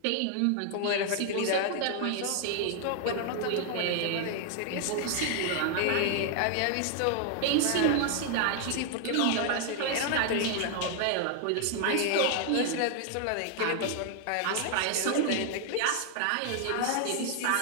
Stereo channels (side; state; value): both; different; correlation 0.00